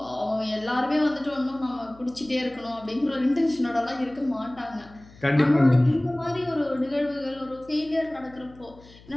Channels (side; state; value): left; noise; hum, 23 dB below the sound